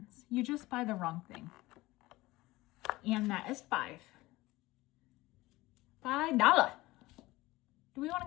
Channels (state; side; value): quieter; right; 19.3 dB